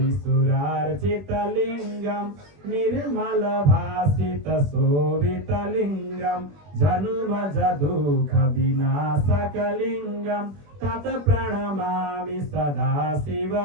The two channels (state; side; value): late; left; 21 ms